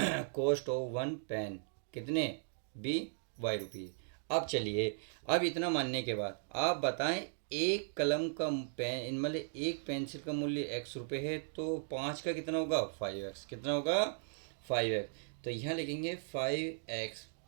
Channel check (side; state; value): left; silent; digital silence